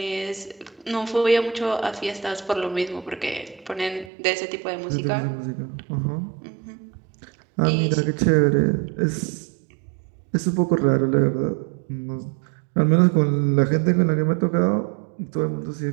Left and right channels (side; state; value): left; drops out; at 4.1 s